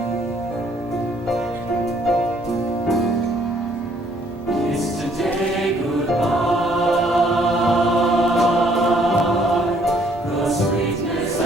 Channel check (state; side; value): normal; both; correlation 0.64